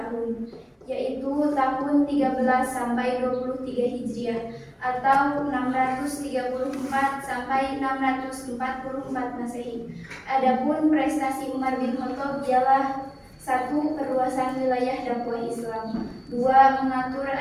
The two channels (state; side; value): identical; both; correlation 1.00